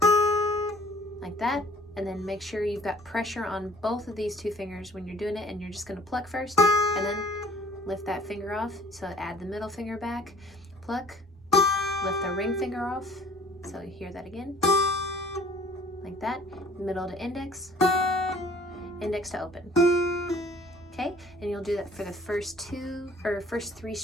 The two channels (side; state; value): both; normal; correlation 0.52